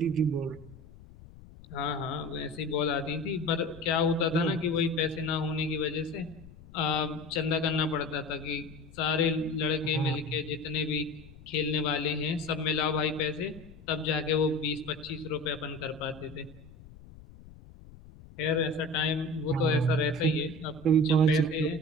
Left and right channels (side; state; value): left; noise; rumble, 20 dB below the sound